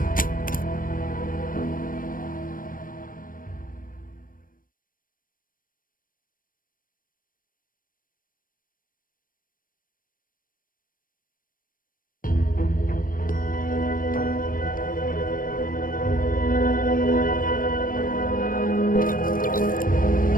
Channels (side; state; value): right; late; 0.40 ms